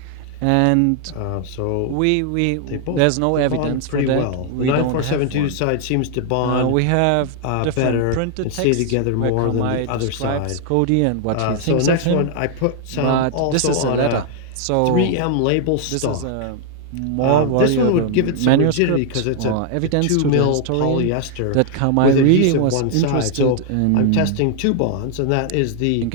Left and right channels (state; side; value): different; both; correlation 0.00